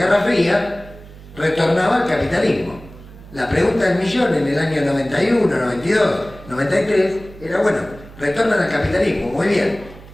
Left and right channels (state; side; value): noise; right; hum, 19 dB below the sound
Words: Fría, retornaba al capitalismo. La pregunta del millón en el año 91, 92, 93 era, bueno, retornan al capitalismo, muy bien.